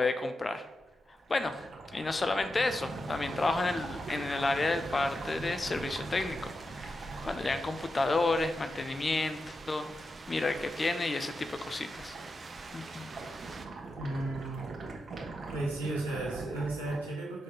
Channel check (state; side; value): normal; both; correlation 0.88